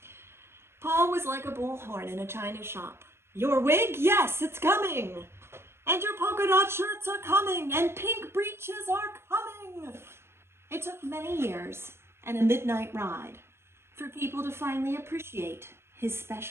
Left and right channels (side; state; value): left; late; 0.12 ms